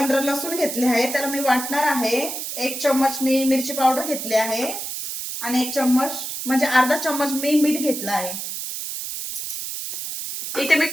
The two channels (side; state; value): right; noise; hiss, 6 dB below the sound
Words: लसूण घेतले आहे, त्याला मी वाटणार आहे। 1 चम्मच मी मिरची पावडर घेतली आहे आणि 1 चम्मच म्हणजे अर्धा चम्मच मी मीठ घेतला आहे। इथे मी